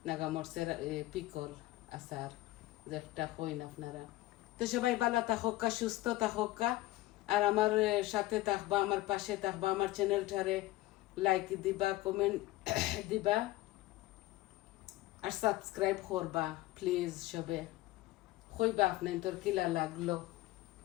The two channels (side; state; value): right; quieter; 17.6 dB